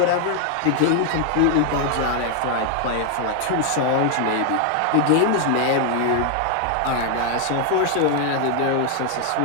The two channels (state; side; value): different; both; correlation 0.00